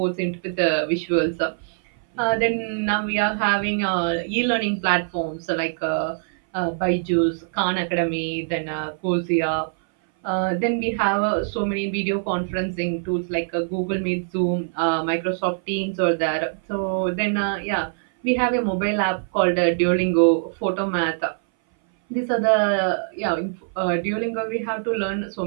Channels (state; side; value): silent; left; 60 dB below the other